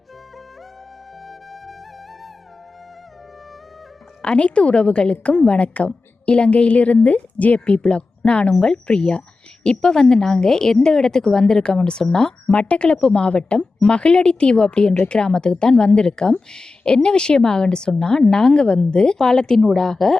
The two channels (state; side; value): quieter; right; 3.7 dB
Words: அனைத்து உறவுகளுக்கும் வணக்கம். இலங்கையிலிருந்து ஜேபி பிளாக். நான் உங்கள் பிரியா. இப்போ வந்து நாங்கள் எந்த இடத்துக்கு வந்திருக்கோம்னு சொன்னால் மட்டக்களப்பு மாவட்டம் மகிழடித்தீவு அப்படின்ற கிராமத்துக்கு தான் வந்திருக்கோம். என்ன விஷயமாகன்னு சொன்னால் நாங்கள் வந்து பாலத்தினூடாக